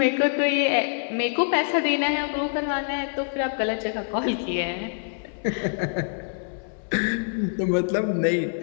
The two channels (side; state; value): right; silent; 62 dB below the other